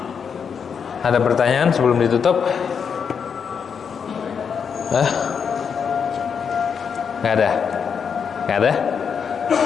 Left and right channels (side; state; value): right; quieter; 6.7 dB